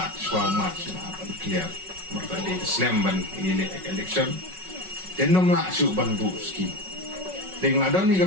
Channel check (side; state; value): left; late; 5.4 ms